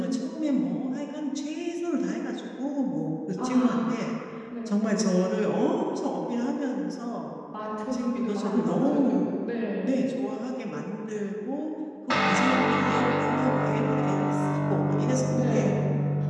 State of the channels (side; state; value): both; identical; correlation 1.00